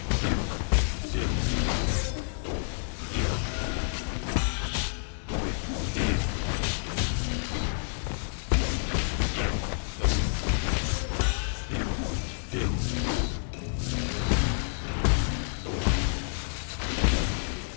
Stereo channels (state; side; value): silent; right; digital silence